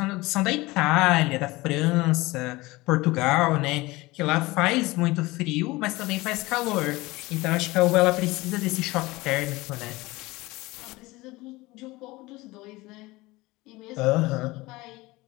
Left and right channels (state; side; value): quieter; right; 21.0 dB